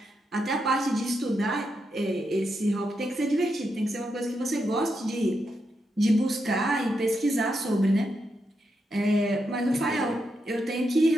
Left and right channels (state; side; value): normal; both; correlation 0.84